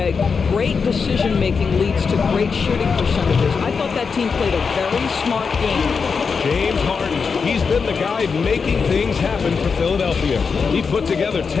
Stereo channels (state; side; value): quieter; right; 5.4 dB